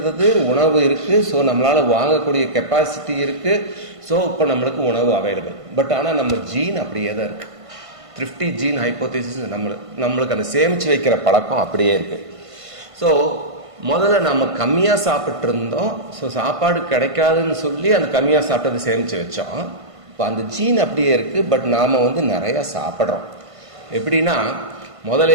உணவு இருக்குது, ஸோ நம்மளால் வாங்கக்கூடிய கெப்பாசிட்டி இருக்குது. ஸோ இப்போ நம்மளுக்கு உணவு அவைலபிள். பட் ஆனால் நம்ம ஜீன் அப்படியே தான் இருக்குது. த்ரிஃப்டி ஜீன் ஹைப்போதேசிஸ் நம்மளுக்கு அந்த சேமித்து வைக்கிற பழக்கம் அப்படியே இருக்குது. ஸோ முதல்ல நம்ம கம்மியாக சாப்பிட்டு இருந்தோம். ஸோ சாப்பாடு கிடைக்காதுன்னு சொல்லி அந்த கம்மியாக சாப்பிட்டதை சேமித்து வச்சோம். இப்போ அந்த ஜீன் அப்படியே இருக்குது. பட் நாம் நிறையா சாப்பிட்றோம். எப்படின்னா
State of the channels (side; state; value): left; late; 1.5 ms